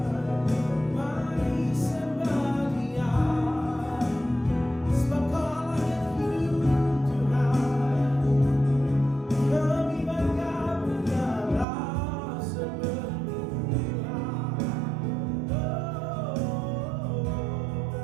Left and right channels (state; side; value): drops out; left; at 11.7 s